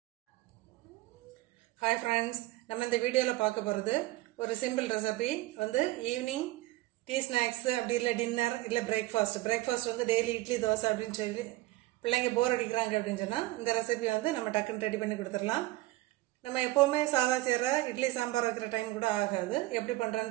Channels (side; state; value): left; quieter; 18.3 dB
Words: ஹாய் ஃப்ரெண்ட்ஸ், நம்ம இந்த வீடியோவில் பார்க்க போகிறது ஒரு simple recipe. Evening tea snacks, அப்படி இல்லை டின்னர், இல்லை பிரேக்ஃபாஸ்ட் டெய்லி இட்லி தோசை அப்படின்னு சொல்லி பிள்ளைங்க போர் அடிக்கிறாங்க அப்படின்னு சொன்னால் இந்த ரெசிபி நம்ம டக்குன்னு ரெடி பண்ணி கொடுத்துடலாம். நம்ம எப்போவுமே சாதா செய்கிற இட்லி சாம்பார் வைக்கிற டைம் கூட ஆகாது. எப்படி பண்ணுறேன்னு